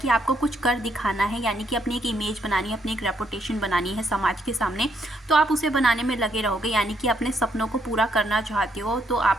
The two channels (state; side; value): normal; both; correlation 0.74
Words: आपको कुछ कर दिखाना है, यानी कि अपनी एक इमेज बनानी है, अपनी एक रेपुटेशन बनानी है समाज के सामने। तो आप उसे बनाने में लगे रहोगे, यानी कि अपने सपनों को पूरा करना चाहते हो तो